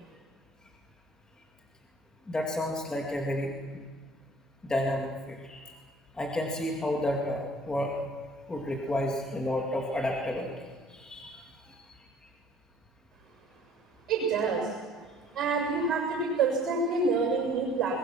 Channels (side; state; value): both; normal; correlation 0.53